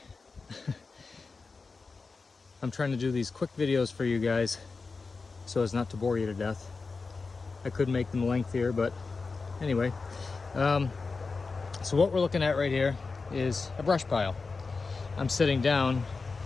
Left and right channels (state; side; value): quieter; right; 4.3 dB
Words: I'm trying to do these quick videos for you guys so as not to bore you to death. I could make them lengthier, but anyway. So what we're looking at right here is a brush pile. I'm sitting down,